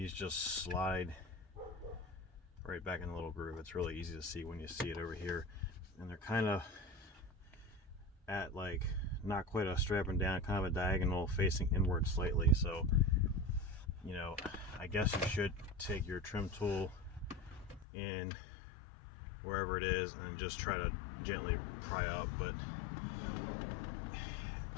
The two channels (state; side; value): drops out; right; at 17.9 s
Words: just slide right back in the little groove. It's really easy to see when you see it over here, and they're kind of at like not quite a strapping down, kind of a diagonal facing inward slightly. So you know, I guess you should take your trim tool in wherever it is and just try to gently pry up, but